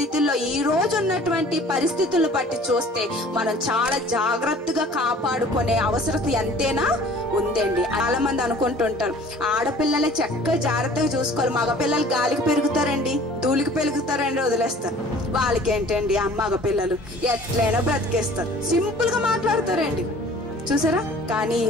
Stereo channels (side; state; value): both; normal; correlation 0.49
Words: ఈ రోజు ఉన్నటువంటి పరిస్థితులను బట్టి చూస్తే మనం చాలా జాగ్రత్తగా కాపాడుకునే అవసరం ఎంతైనా ఉందండి. చాలా మంది అనుకుంటుంటారు ఆడపిల్లలే చక్కగా జాగ్రత్తగా చూసుకోవాలి, మగపిల్లలు గాలికి పెరుగుతారండి, ధూళికి పెరుగుతారండి, వదిలేస్తారు. వాళ్ళకి ఏంటండి మగ పిల్లలు ఎట్లయినా బ్రతికేస్తారు, సింపుల్ గా మాట్లాడతారండి, చూసారా. కానీ ఈ